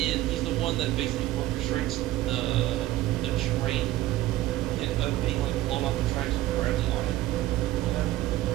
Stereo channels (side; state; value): left; quieter; 15.8 dB